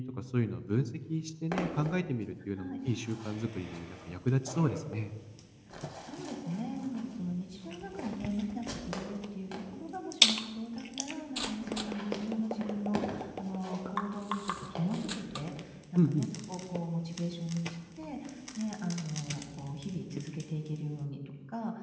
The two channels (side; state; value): both; identical; correlation 1.00